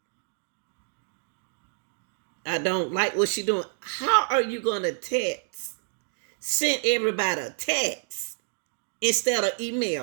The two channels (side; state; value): left; silent; digital silence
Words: I don't like what she doing. How are you going to text? Send everybody a text instead of